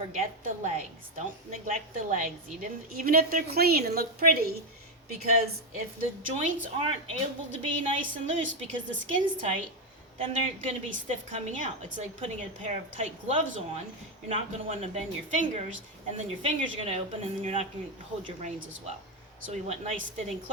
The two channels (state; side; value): normal; both; correlation 0.07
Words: the legs. Don't neglect the legs, even if they're clean and look pretty, because if the joints aren't able to be nice and loose because the skin's tight, then they're going to be stiff coming out. It's like putting a pair of tight gloves on. You're not going to want to bend your fingers, and then your fingers are going to open, and then you're not going to hold your reins as well. So we want nice fitting